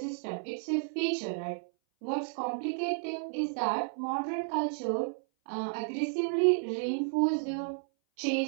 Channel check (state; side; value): silent; left; 56 dB below the other